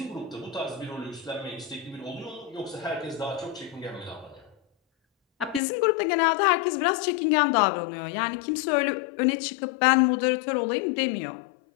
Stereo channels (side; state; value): right; drops out; at 5.6 s